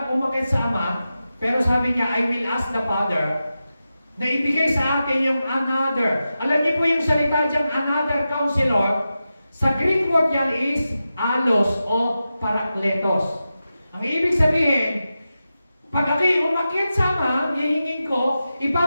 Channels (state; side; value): inverted; both; correlation -0.92